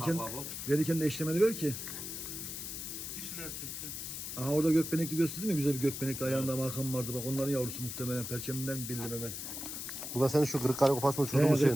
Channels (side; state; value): left; noise; hiss, 6 dB below the sound